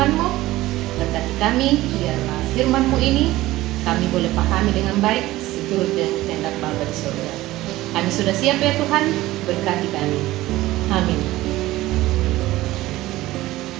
Berkati kami, biarlah firman-Mu ini kami boleh pahami dengan baik seturut dengan kehendak Bapa di surga. Kami sudah siap ya Tuhan, berkati kami. Amin.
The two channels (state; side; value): quieter; left; 17.0 dB